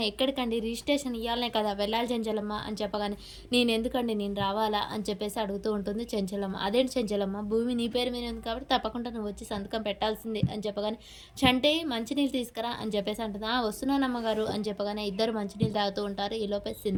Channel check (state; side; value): identical; both; correlation 1.00